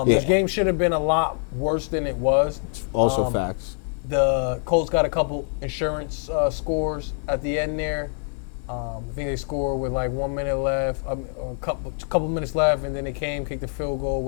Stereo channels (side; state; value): right; silent; 58 dB below the other